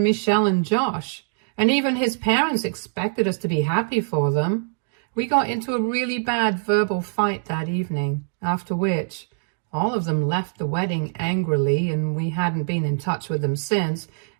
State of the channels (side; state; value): left; silent; digital silence